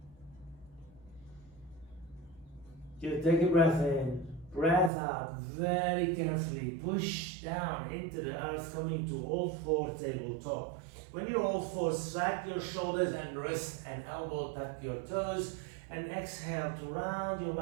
Just take a breath in, breath out, very carefully, push down into the earth, coming to all four tabletop. When you're all four, slack your shoulders and wrist and elbow, tuck your toes, and exhale to round your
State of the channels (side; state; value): left; drops out; at 4.9 s